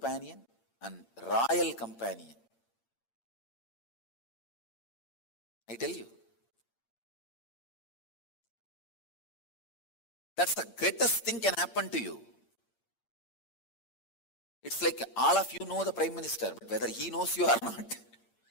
and royal companion. I tell you. That's the greatest thing can happen to you. It's like all of you know the Prime Minister, but whether he knows you or not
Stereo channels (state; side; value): late; right; 8.7 ms